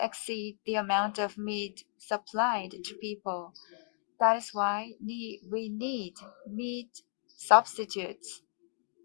exceed the amount of meat supplied to people. That is why we need meat substitutes.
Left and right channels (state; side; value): silent; right; digital silence